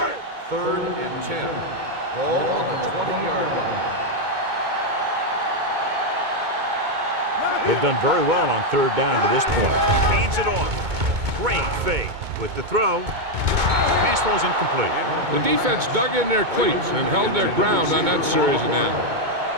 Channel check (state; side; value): late; left; 2.2 ms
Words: Third and 10. Ball on the 20-yard line. They've done very well on 3rd down to this point. Hands it off. Great fake with the throw. Pass ball's incomplete. The defense dug in their cleats and held their ground on that series of downs.